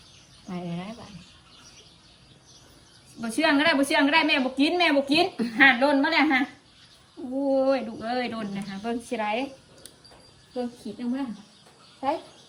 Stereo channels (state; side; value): identical; both; correlation 1.00